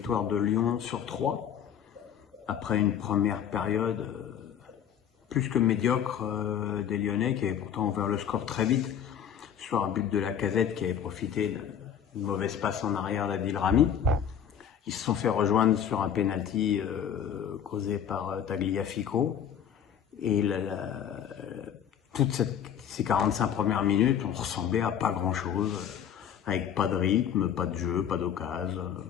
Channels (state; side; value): quieter; right; 8.8 dB